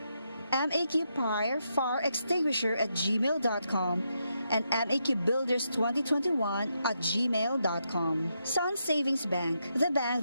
maqfireextinguisher@gmail.com and maqbuilders2021@gmail.com. Sun Savings Bank, the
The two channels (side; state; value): both; inverted; correlation -0.82